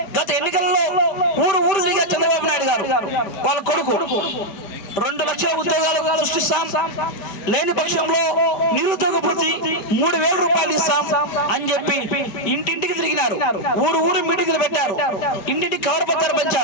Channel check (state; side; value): late; right; 5.1 ms